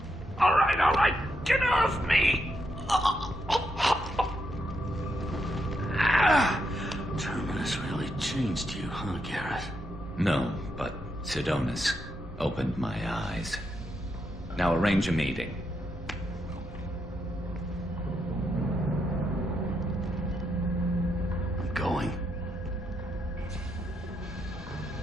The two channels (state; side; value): normal; both; correlation 0.81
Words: right. Get off me! Terminus really changed you, huh, Garrett? No, but Sidonus opened my eyes. Now arrange a meeting. I'm going.